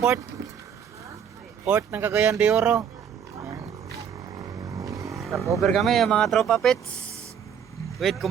Port ng Cagayan de Oro. Stop over kami yung mga tropa pits with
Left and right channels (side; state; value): left; quieter; 7.9 dB